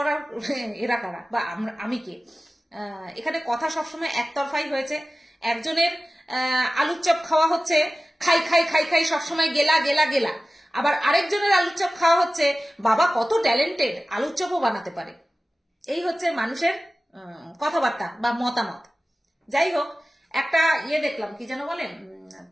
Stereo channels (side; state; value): both; normal; correlation 0.96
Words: এরা কারা বা আমি কে? এখানে কথা সবসময় একতরফাই হয়েছে। একজনের আলুর চপ খাওয়া হচ্ছে খাই খাই খাই খাই সবসময় গেলা গেলা গেলা, আবার আরেকজনের আলুর চপ খাওয়া হচ্ছে বাবা কত ট্যালেন্টেড, আলুর চপও বানাতে পারে। এই হচ্ছে মানুষের কথাবার্তা বা মতামত। যাই হোক, একটা ইয়ে দেখলাম, কি যেন বলেন,